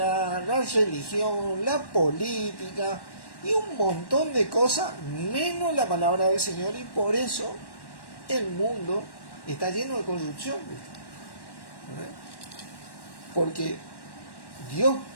la religión, la política y un montón de cosas, menos la palabra del Señor, y por eso el mundo está lleno de corrupción, ¿verdad? Porque Dios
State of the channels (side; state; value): right; late; 1.1 ms